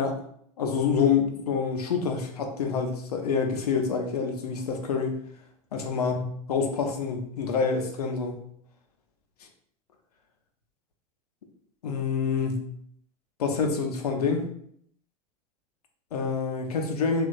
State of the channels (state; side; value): quieter; right; 5.2 dB